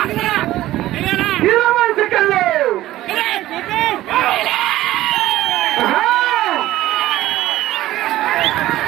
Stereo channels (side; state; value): left; quieter; 15.3 dB